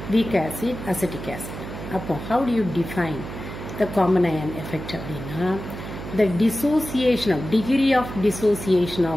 weak acid, acetic acid. அப்போ how do you define the common ion effect அப்படின்னா the dissociation of degree of dissociation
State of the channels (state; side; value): noise; right; hum, 9 dB below the sound